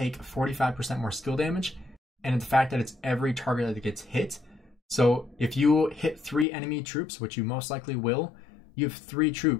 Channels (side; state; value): right; drops out; at 6.5 s